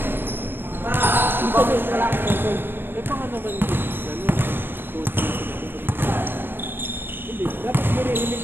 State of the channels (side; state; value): left; late; 0.098 ms